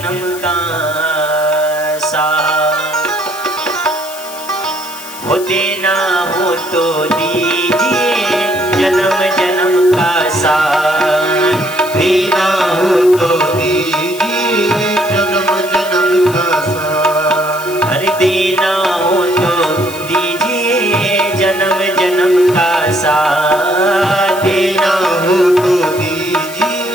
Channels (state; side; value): noise; left; hiss, 14 dB below the sound